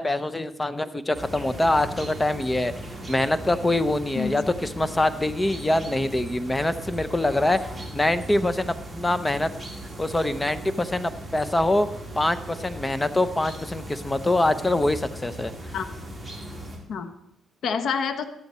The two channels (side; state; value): both; normal; correlation 0.93